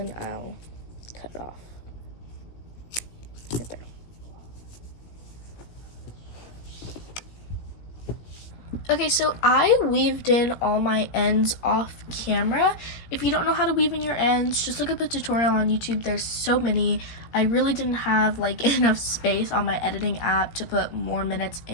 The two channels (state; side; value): late; right; 17 ms